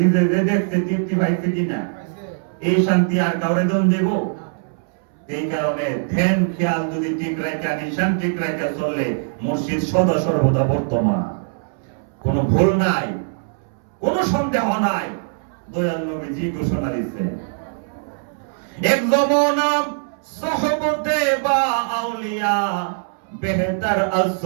যে দেখছে তৃপ্তি পাইছে কিনা, এই শান্তি আর কাউরে দন দেব? এই কারণে ধ্যান খেয়াল যদি ঠিক রাখা, নিশান ঠিক রাখা চললে মুর্শিদ সদা সর্বদা বর্তমান। কোনো ভুল নাই, কোনো সন্দেহ নাই। দয়াল নবীজি ঘোষণা দিচ্ছেন, এক জমানা সহবতে বা আউলিয়া বেহতর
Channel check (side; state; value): left; silent; 65 dB below the other